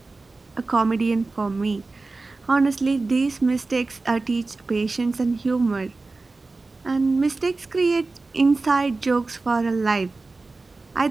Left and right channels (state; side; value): quieter; left; 3.5 dB